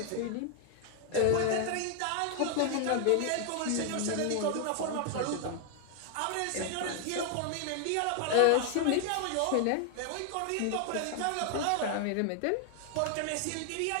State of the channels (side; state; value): both; different; correlation 0.00